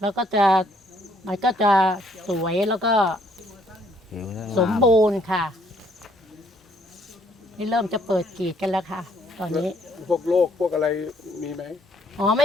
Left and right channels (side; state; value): both; normal; correlation 0.67